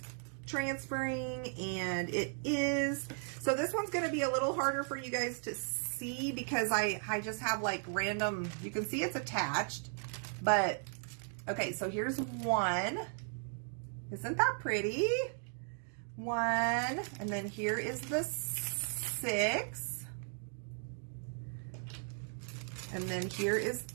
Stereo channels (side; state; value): left; silent; 53 dB below the other